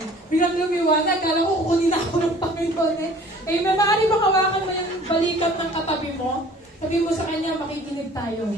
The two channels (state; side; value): normal; both; correlation 0.50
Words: Biglang lumiwanag, kala ko kukunin ako ng Panginoon eh. Amen. Maaari ba kawakan mo yung balikat ng katabi mo? Sabi mo sa kanya, makikinig tayo.